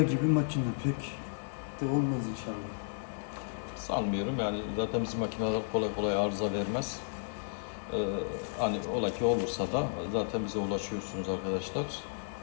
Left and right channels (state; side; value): silent; right; digital silence